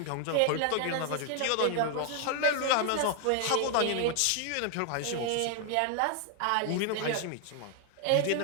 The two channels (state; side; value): different; both; correlation 0.00